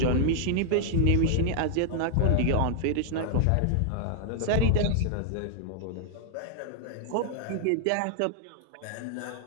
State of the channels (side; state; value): both; different; correlation -0.01